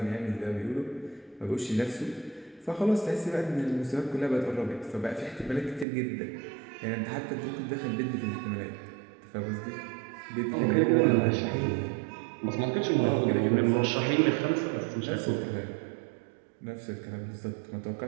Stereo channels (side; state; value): left; drops out; at 5.9 s